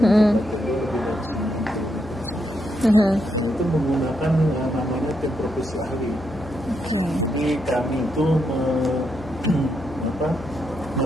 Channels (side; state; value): left; noise; hum, 14 dB below the sound